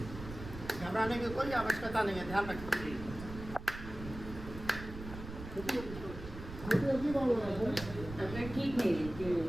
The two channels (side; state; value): right; noise; rumble, 11 dB below the sound